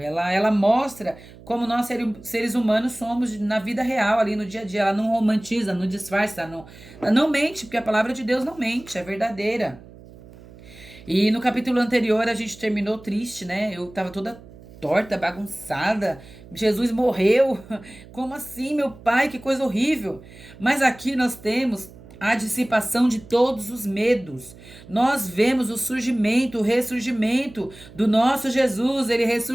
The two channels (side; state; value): right; noise; hum, 20 dB below the sound